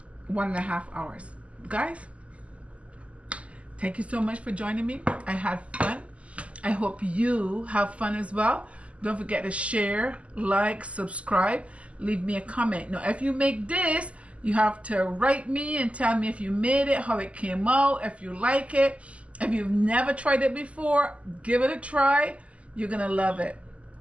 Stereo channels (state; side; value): late; left; 0.063 ms